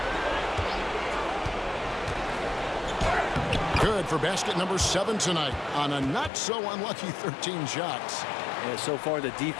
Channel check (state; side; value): drops out; right; at 6.3 s